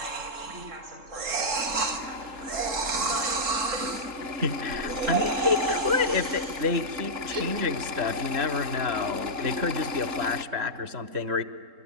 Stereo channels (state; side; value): late; left; 3.7 ms